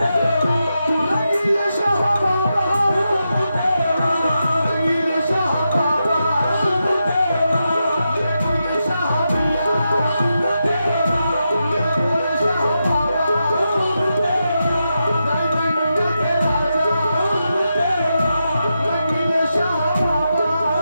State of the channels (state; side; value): inverted; both; correlation -0.87